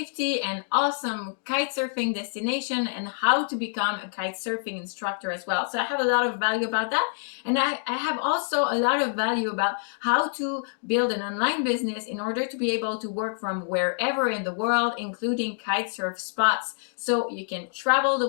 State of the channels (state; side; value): silent; right; digital silence